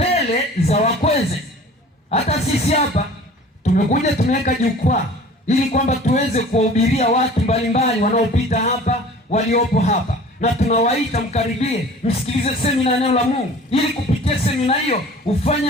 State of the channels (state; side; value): normal; both; correlation 0.45